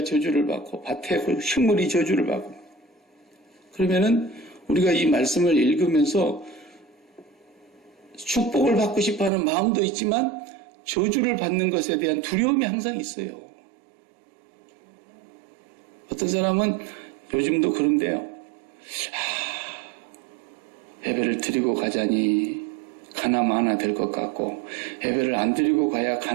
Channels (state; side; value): drops out; left; at 9.3 s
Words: 저주를 받고 밭에 식물이 저주를 받고. 그러면은 우리가 이 말씀을 읽으면서 축복을 받고 싶어하는 마음도 있지만 저주를 받는 것에 대한 두려움이 항상 있어요. 어떤 사람은 요즘도 그런데요. 예배를 드리고 가자니 가나마 하나 될 것 같고 예배를 안 드리고 가야